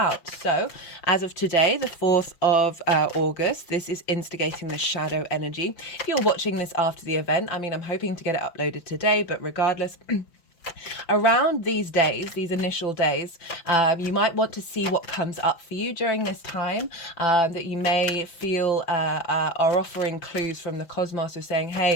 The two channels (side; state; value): right; late; 5.9 ms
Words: So as of today, the 4th of August, this is instigating the shadow energy. If you're watching this after the event, I'm hoping to get it uploaded today, but regardless, around these days, these initial days, you might want to see what comes up for you during this time, that you may feel are offering clues from the cosmos of saying,